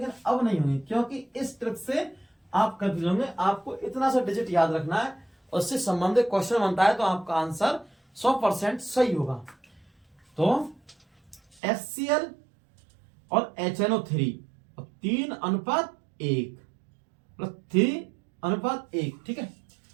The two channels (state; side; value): drops out; left; at 11.6 s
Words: अब नहीं होंगे क्योंकि इस ट्रिक से आप कंफ्यूज होंगे। आपको इतना सा डिजिट याद रखना है, उससे संबंधित क्वेश्चन बनता है तो आपका आंसर 100% सही होगा। तो HCl और HNO3 और 3:1 प्लस 3:1, ठीक है।